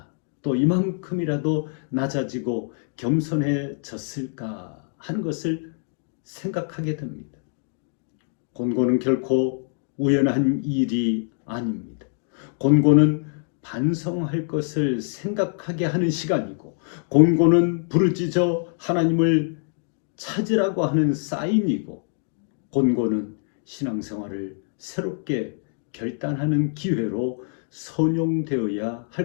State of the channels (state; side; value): silent; right; digital silence